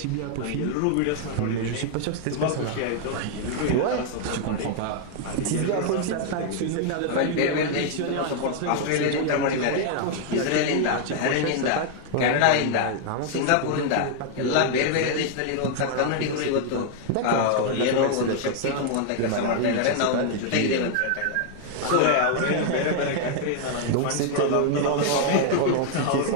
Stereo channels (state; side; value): different; both; correlation 0.00